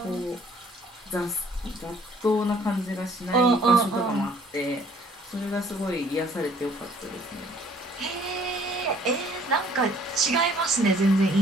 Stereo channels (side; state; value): both; normal; correlation 0.58